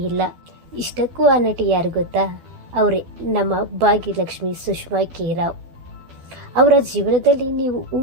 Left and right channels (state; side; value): late; left; 12 ms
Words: ಇಲ್ಲ. ಇಷ್ಟಕ್ಕೂ ಆ ನಟಿ ಯಾರು ಗೊತ್ತಾ? ಅವರೇ ನಮ್ಮ ಭಾಗ್ಯಲಕ್ಷ್ಮಿ ಸುಷ್ಮಾ ಕೆ ರಾವ್. ಅವರ ಜೀವನದಲ್ಲಿ ನೀವು